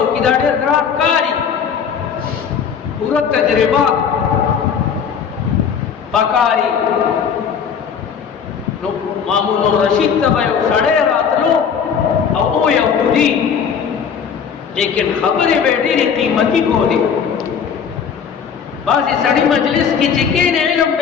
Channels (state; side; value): quieter; right; 7.1 dB